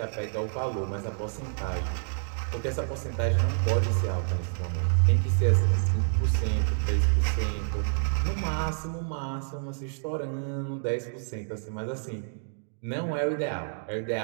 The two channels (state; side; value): silent; left; digital silence